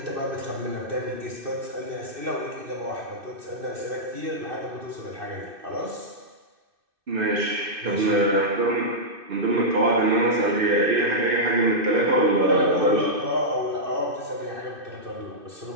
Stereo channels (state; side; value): late; left; 2.6 ms